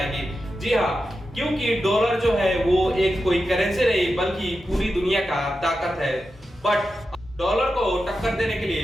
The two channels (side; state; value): both; normal; correlation 0.90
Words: जी हाँ, क्योंकि डॉलर जो है वो एक कोई करेंसी नहीं बल्कि पूरी दुनिया का ताकत है। बट डॉलर को टक्कर देने के